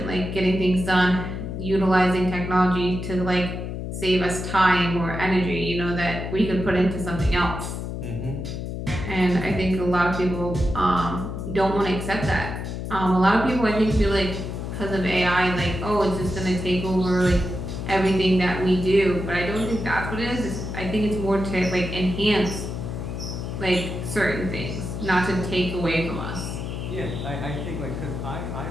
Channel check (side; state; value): left; noise; hum, 5 dB below the sound